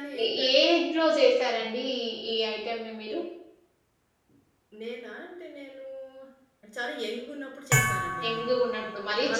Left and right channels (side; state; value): both; identical; correlation 1.00